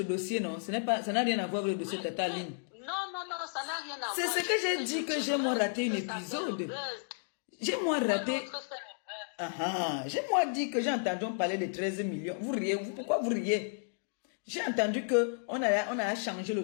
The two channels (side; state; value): right; silent; digital silence